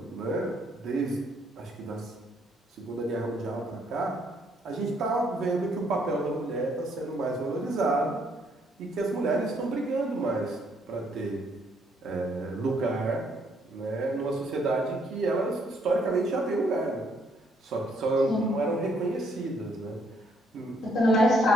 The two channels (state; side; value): normal; both; correlation 0.69